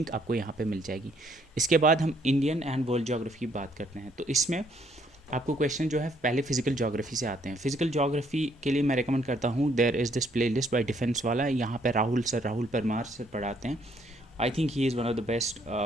आपको यहाँ पे मिल जाएगी। इसके बाद हम इंडियन एंड वर्ल्ड ज्योग्राफी की बात करते हैं। तो इसमें आपको क्वेश्चन जो है पहले फिजिकल ज्योग्राफी से आते हैं। फिजिकल ज्योग्राफी के लिए मैं रिकमेंड करता हूँ there is this playlist by defence वाला, यहाँ पर राहुल परमार सर पढ़ाते हैं। I think he is one of the best,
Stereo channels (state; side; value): normal; both; correlation 0.68